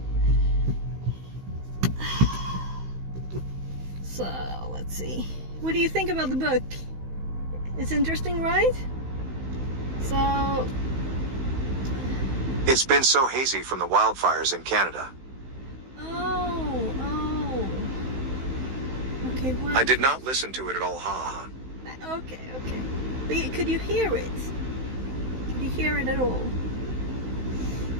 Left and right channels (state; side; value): late; left; 16 ms